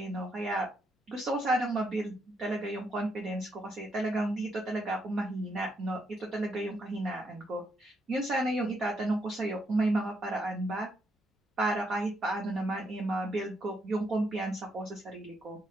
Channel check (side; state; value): both; normal; correlation 0.77